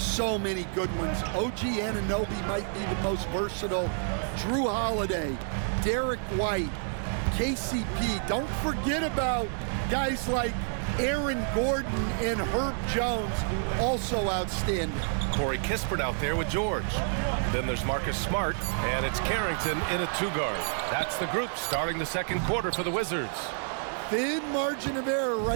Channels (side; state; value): left; silent; 57 dB below the other